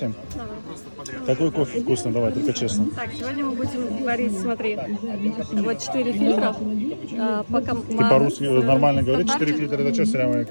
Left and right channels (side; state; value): both; inverted; correlation -1.00